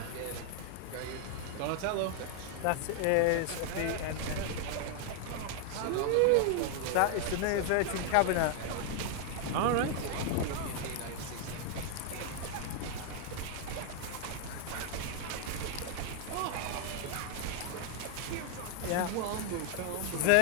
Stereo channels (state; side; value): different; both; correlation 0.00